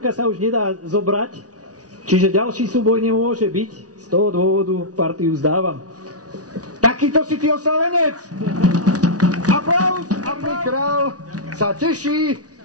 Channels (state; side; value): late; left; 0.68 ms